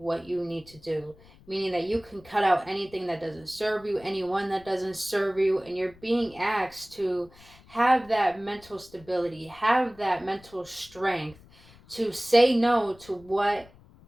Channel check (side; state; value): left; noise; rumble, 25 dB below the sound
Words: you need to do, meaning that you can cut out anything that doesn't serve you, anyone that doesn't serve you, and you're being asked to have that mental stability, have that mental strength to say no to what